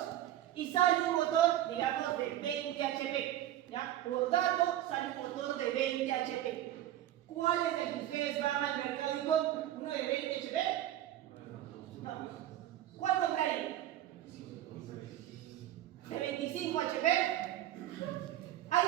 y sale un motor, digamos, de 20 HP, ¿ya? Por dato sale un motor de 20 HP. ¿Cuál es el que ustedes van al mercado y compran? ¿Uno de 20 HP? No. ¿Cuál comprarían? ¿De 25 HP? ¿Hay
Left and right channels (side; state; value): left; quieter; 12.9 dB